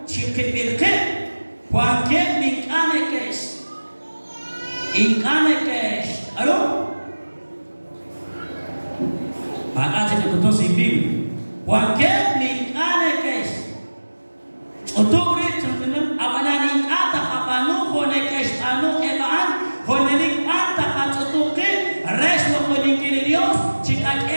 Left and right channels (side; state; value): both; inverted; correlation -1.00